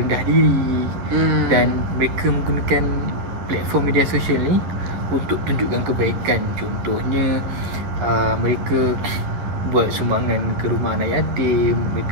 diri. Dan mereka menggunakan platform media sosial ni untuk tunjukkan kebaikan. Contohnya mereka buat sumbangan ke rumah anak yatim,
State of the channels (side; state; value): left; late; 11 ms